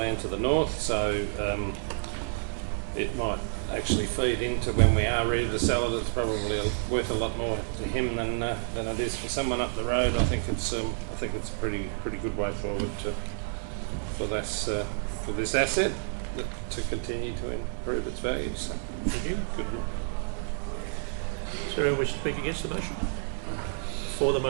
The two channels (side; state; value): left; silent; digital silence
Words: to the north, so it might actually feed into when we are ready to sell it. It's probably worth a lot more to him than it is for someone up the road. I think it's a pretty good way forward for this asset to continue to improve its value. So, thank you. Good. Is there anyone wish to speak against the motion? For the